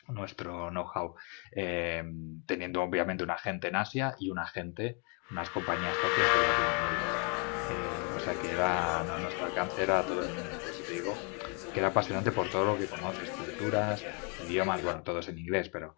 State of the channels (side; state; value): right; quieter; 35.6 dB